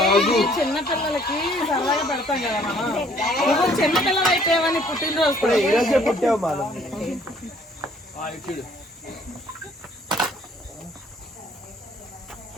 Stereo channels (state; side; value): normal; both; correlation 0.60